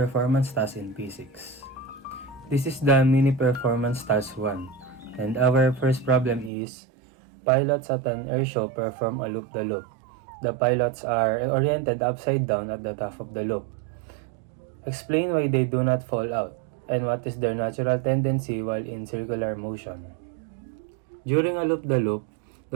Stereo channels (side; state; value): left; drops out; at 6.5 s